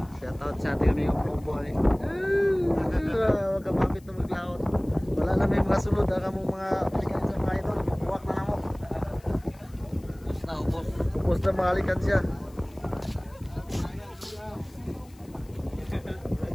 Shoutout sa ating aming buhay. Huwag ka mapit na maglaot. Wala na may mga sulod. Ang mong mga likan siya mga idol. Buwak na mo. Ubus na ubos. Ubos na mga likan siya.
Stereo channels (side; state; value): left; noise; hiss, 28 dB below the sound